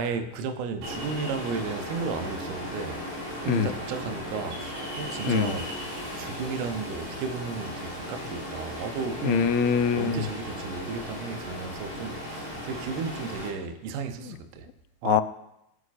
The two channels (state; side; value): late; left; 25 ms